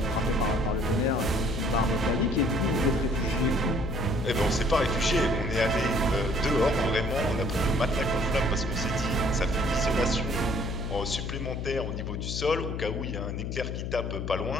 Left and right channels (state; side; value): noise; left; hum, 4 dB below the sound